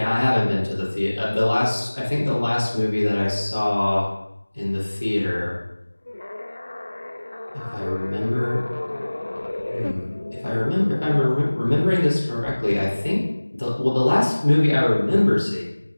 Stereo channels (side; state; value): both; inverted; correlation -1.00